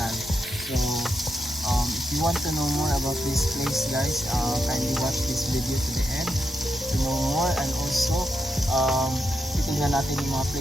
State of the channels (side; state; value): both; normal; correlation 0.83